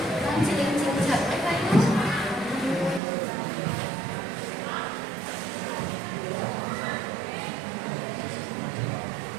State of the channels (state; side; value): drops out; left; at 3.0 s